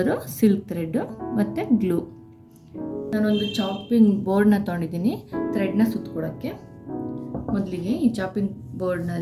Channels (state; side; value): identical; both; correlation 1.00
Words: ಸಿಲ್ಕ್ ಥ್ರೆಡ್ಡು ಮತ್ತು ಗ್ಲೂ. ನಾನೊಂದು ಚಾಪಿಂಗ್ ಬೋರ್ಡ್ನ ತೊಗೊಂಡಿದ್ದೀನಿ ಥ್ರೆಡ್ನ ಸುತ್ಕೊಳಕ್ಕೆ. ಮೊದಲಿಗೆ ಈ ಚಾಪಿಂಗ್